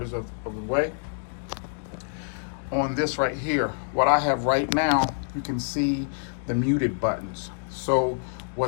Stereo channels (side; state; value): right; silent; digital silence